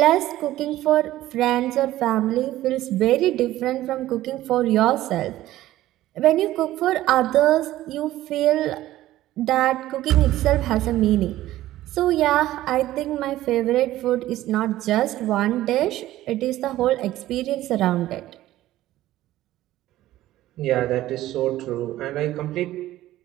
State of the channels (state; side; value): quieter; left; 14.9 dB